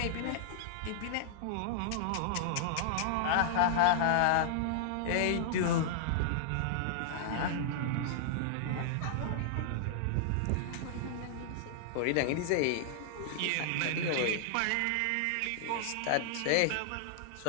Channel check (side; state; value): both; different; correlation -0.01